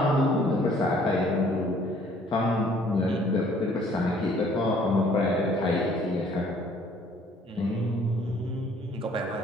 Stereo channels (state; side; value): normal; both; correlation 0.59